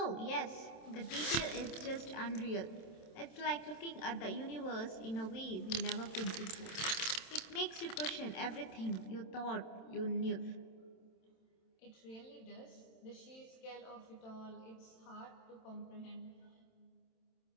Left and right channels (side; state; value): right; late; 27 ms